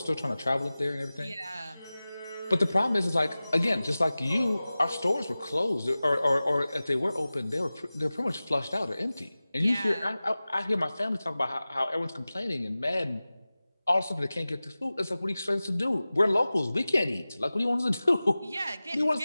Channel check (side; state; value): both; inverted; correlation -0.97